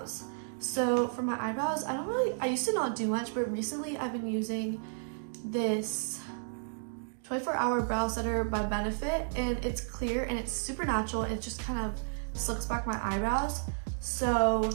So for my eyebrows, I used to not do much, but recently I've been using this 24-hour brow setter by Benefit, and it's clear and it's super natural, and it just kind of slicks back my eyebrows. So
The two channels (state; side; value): silent; left; digital silence